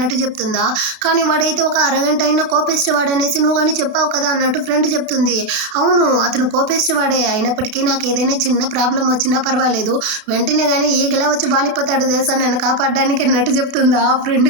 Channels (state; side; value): late; left; 33 ms